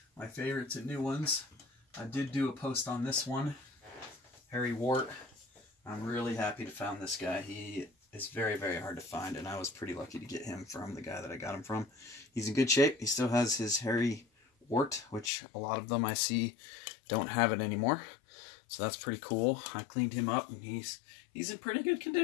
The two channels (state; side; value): drops out; right; at 15.3 s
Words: my favorites and new ones. I did do a post on this one, Harry Wart. I'm really happy to found this guy. He is very, very hard to find, and I was pretty lucky to get him from the guy that I got him from. He's in good shape. He still has his Harry Wart, which a lot of them I see don't have it anymore. So that's pretty cool. I cleaned him up, and he's in pretty good